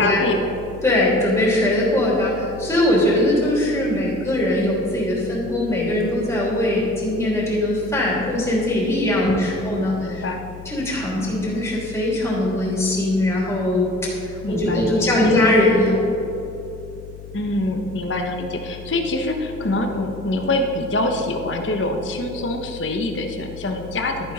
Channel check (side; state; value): left; noise; hum, 15 dB below the sound